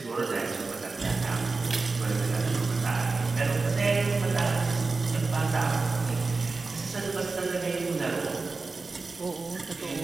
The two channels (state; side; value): quieter; left; 3.9 dB